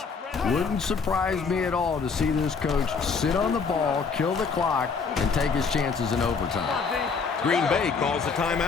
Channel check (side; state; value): right; quieter; 5.2 dB